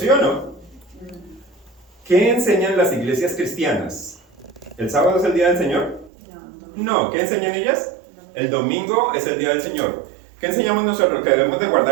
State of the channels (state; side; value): drops out; left; at 6.1 s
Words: o no? ¿Qué enseñan las iglesias cristianas? ¿El sábado es el día del Señor? No. ¿Qué enseñan ellas? El domingo es el día del Señor. ¿Qué enseñamos nosotros? ¿Que debemos de